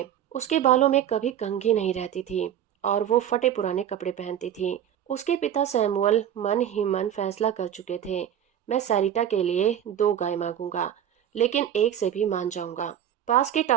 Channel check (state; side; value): quieter; left; 10.1 dB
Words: उसके बालों में कभी कंघी नहीं रहती थी और वो फटे पुराने कपड़े पहनती थी। उसके पिता सैमुअल मन ही मन फैसला कर चुके थे, मैं सैरिटा के लिए 2 गाय मांगूंगा, लेकिन एक से भी मान जाऊंगा। पास के